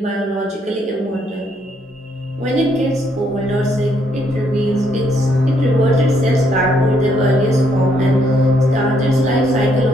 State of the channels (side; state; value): both; normal; correlation 0.72